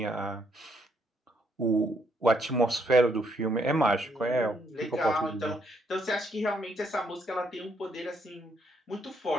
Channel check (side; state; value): both; normal; correlation 0.72